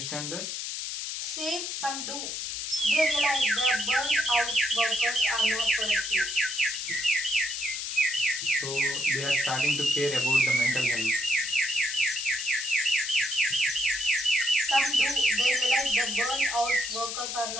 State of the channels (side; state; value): left; noise; hiss, 4 dB below the sound